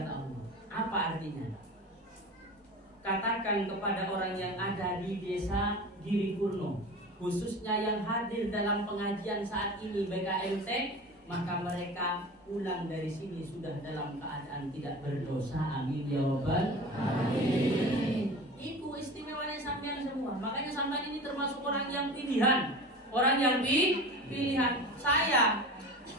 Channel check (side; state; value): both; normal; correlation 0.34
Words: Allah. Apa artinya? Katakan kepada orang yang ada di desa Giri Purno, khususnya yang hadir dalam pengajian saat ini BKMT, maka mereka pulang dari sini sudah dalam keadaan tidak berdosa. Amin ya robbal alamin. Itu istimewanya sampean semua. Makanya sampean ini termasuk orang yang pilihan. Saya